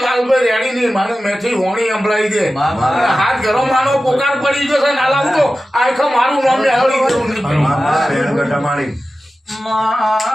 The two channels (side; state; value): both; normal; correlation 0.94